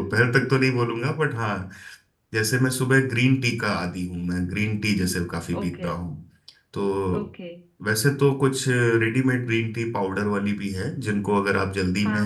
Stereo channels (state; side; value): identical; both; correlation 1.00